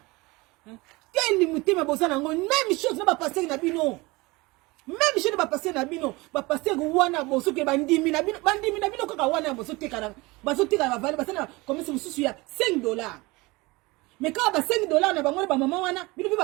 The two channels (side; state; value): left; quieter; 23.2 dB